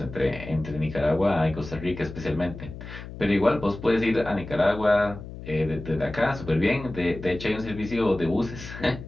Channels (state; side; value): noise; left; hum, 12 dB below the sound